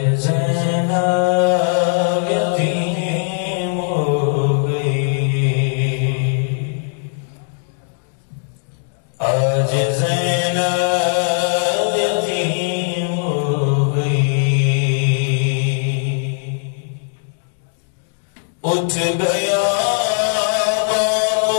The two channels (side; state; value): right; silent; 60 dB below the other